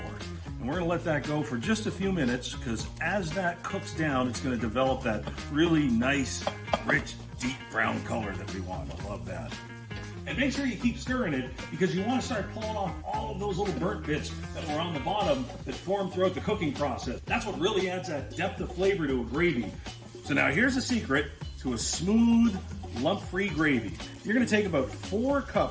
And we're gonna let that go for just a few minutes, because as that cooks down, it's gonna develop that really nice, rich, deep brown color that we want. I love that. And make sure you keep stirring it, because you wanna start pulling off all of those little burnt bits that were on the bottom that formed throughout the cooking process. That's what really adds that depth of flavor to a gravy. So now here's a secret to a smooth, lump-free gravy. You're gonna take about 4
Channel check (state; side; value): identical; both; correlation 1.00